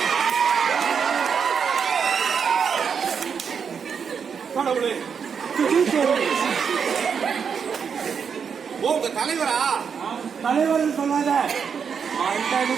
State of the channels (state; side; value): quieter; left; 6.7 dB